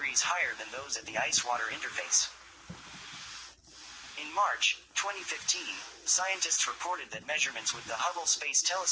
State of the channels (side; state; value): both; identical; correlation 1.00